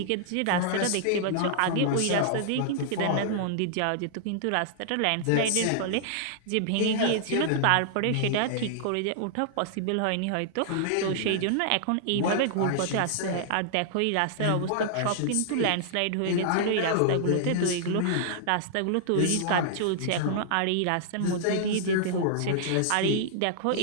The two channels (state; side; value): different; both; correlation -0.01